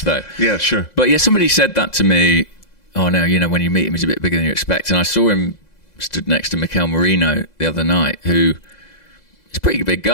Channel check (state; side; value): late; right; 2.0 ms